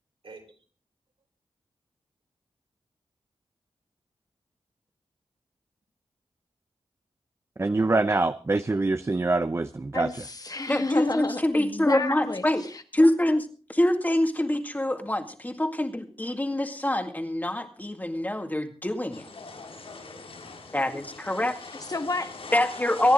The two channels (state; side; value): normal; both; correlation 0.89